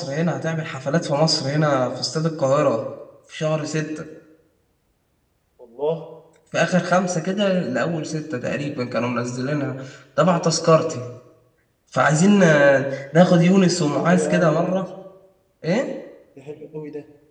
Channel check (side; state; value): both; identical; correlation 1.00